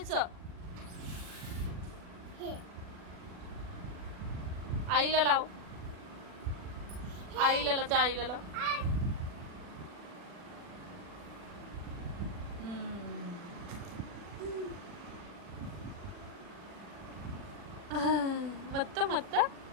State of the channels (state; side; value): late; left; 40 ms